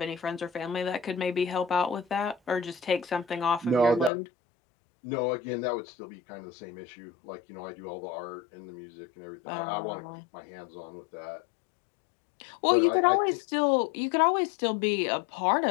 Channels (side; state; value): right; drops out; at 4.1 s